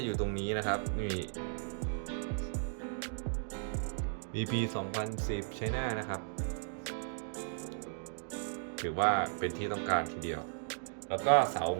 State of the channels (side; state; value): left; silent; digital silence